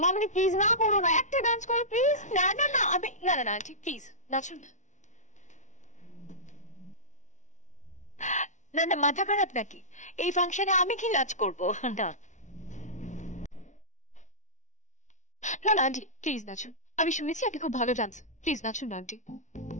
মাম্মি প্লিজ না করো না, একটা ডান্স করো প্লিজ। না না না, আমি না না না ঠিক প্লিজ নাচুন না। না না, মাথা খারাপ নাকি? এই ফাংশনে আমি কি নাচ করবো? না না না আন্টি প্লিজ নাচুন, আমি শুনেছি আপনি খুব ভালো ডান্স, প্লিজ নাচুন না আন্টি।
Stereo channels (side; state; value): right; late; 0.36 ms